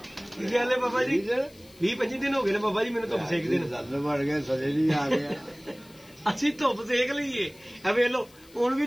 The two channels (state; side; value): noise; left; hiss, 26 dB below the sound